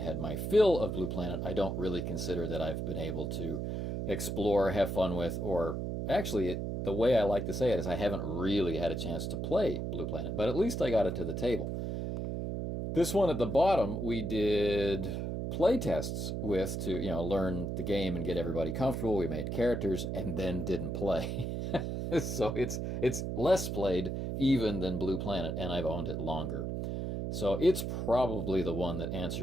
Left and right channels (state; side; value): noise; right; hum, 2 dB below the sound